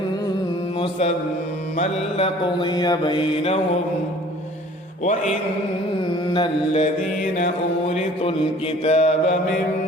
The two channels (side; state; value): both; normal; correlation 0.51